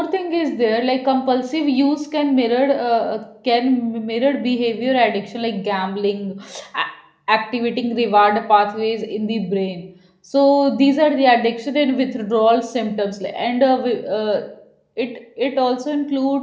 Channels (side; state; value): both; identical; correlation 1.00